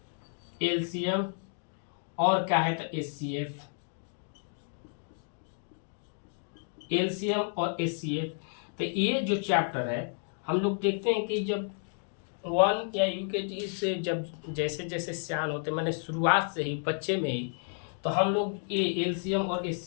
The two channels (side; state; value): right; silent; 57 dB below the other